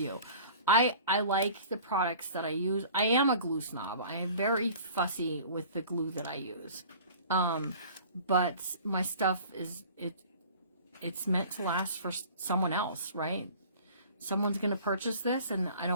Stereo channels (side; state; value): both; inverted; correlation -0.45